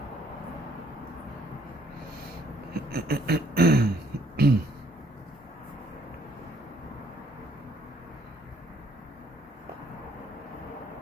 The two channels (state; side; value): normal; both; correlation 0.64